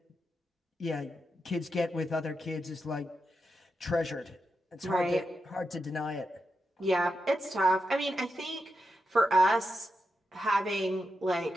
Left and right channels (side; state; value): both; normal; correlation 0.87